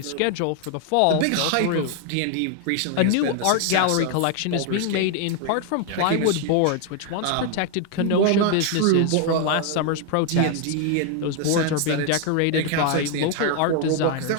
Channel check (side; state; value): both; different; correlation 0.01